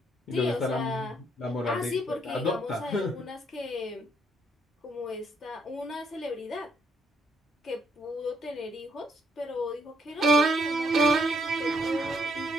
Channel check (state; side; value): normal; both; correlation 0.72